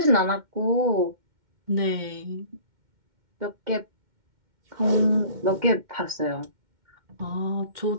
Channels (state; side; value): late; left; 2.1 ms